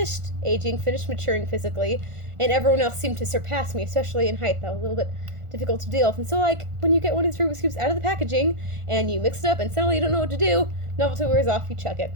aging, finished maturing physically, and everyone else seemed to surpass me, especially in height. That was a little bit difficult to deal with. And so, like, when you get one of these Rubik's Cubes out of the packaging and you mix it up and suddenly you don't know what to do, novelty wears off, you chuck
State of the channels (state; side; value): late; left; 1.4 ms